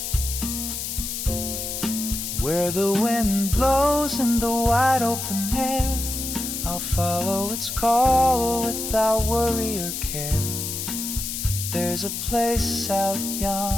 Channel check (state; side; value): noise; left; hiss, 4 dB below the sound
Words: Where the wind blows in the wide open air, I'll follow its call without worry or care. There's a place out